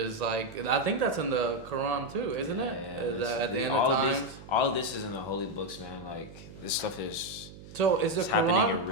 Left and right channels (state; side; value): noise; right; hum, 17 dB below the sound